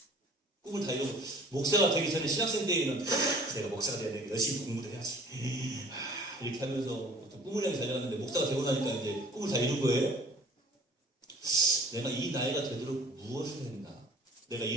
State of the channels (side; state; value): both; normal; correlation 0.50